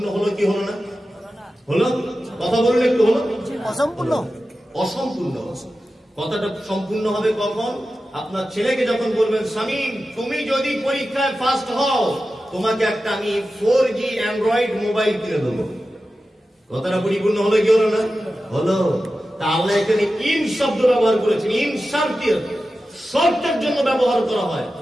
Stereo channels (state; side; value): normal; both; correlation 0.93